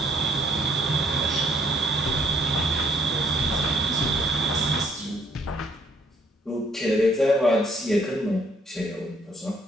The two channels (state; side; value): normal; both; correlation 0.66